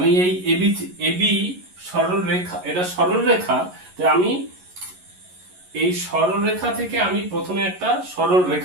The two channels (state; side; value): late; left; 11 ms